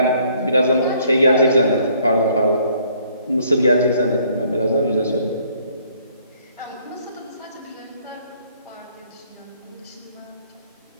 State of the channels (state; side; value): inverted; both; correlation -0.63